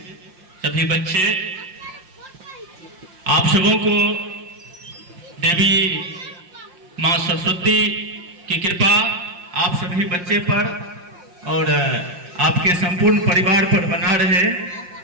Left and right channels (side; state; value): left; late; 5.7 ms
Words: सभी बच्चे, आप सबों को देवी माँ सरस्वती की कृपा आप सभी बच्चे पर और आपके संपूर्ण परिवार पर बना रहे,